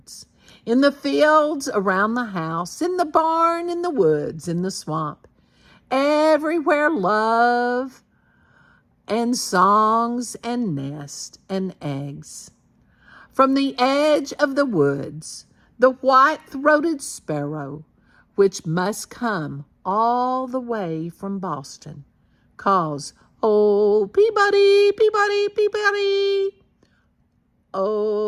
In the fields around the house, in the barn, in the woods, in the swamp. Everywhere love and songs and nests and eggs. From the edge of the woods, the white-throated sparrow, which must come all the way from Boston, calls, "Oh, Peabody, Peabody, Peabody."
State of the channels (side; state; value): both; identical; correlation 1.00